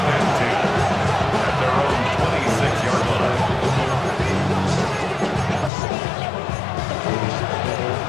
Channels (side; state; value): right; drops out; at 5.7 s